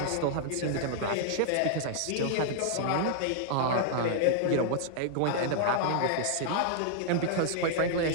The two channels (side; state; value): both; different; correlation -0.01